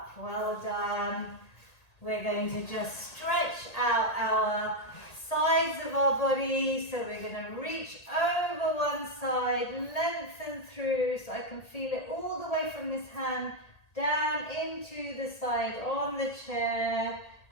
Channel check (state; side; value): late; right; 1.8 ms